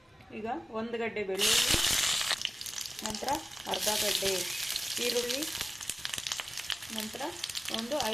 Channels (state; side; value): normal; both; correlation 0.97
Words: ಈಗ 1 ಗಡ್ಡೆ ಬೆಳ್ಳುಳ್ಳಿ, ನಂತರ ಅರ್ಧ ಗಡ್ಡೆ ಈರುಳ್ಳಿ, ನಂತರ ಒಂದು